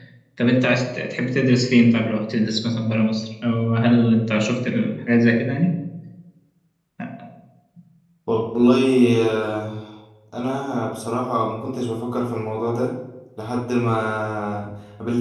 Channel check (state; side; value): identical; both; correlation 1.00